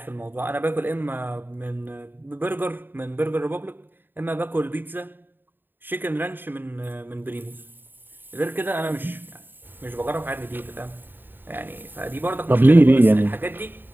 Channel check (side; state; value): left; late; 0.093 ms